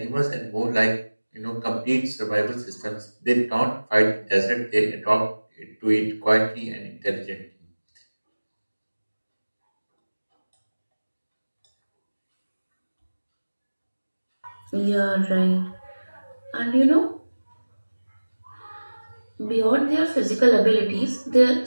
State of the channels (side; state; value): both; inverted; correlation -1.00